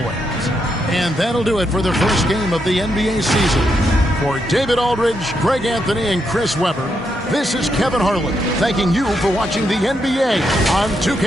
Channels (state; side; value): normal; both; correlation 0.80